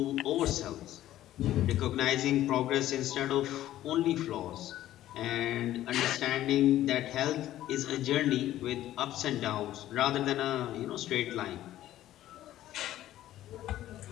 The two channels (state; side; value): quieter; right; 13.6 dB